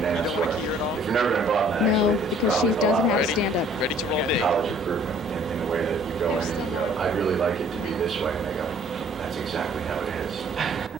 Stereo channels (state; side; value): normal; both; correlation 0.57